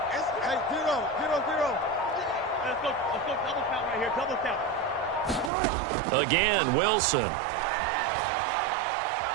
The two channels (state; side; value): drops out; left; at 5.5 s